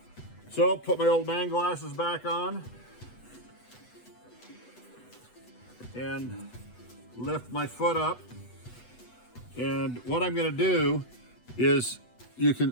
So put my old man glasses back on and lift my foot up. And what I'm gonna do is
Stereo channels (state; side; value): late; right; 8.1 ms